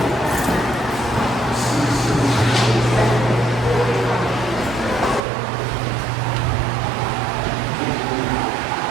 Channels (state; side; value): drops out; left; at 5.2 s